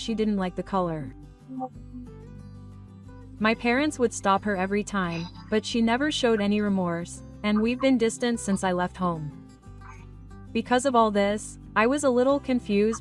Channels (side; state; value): both; identical; correlation 1.00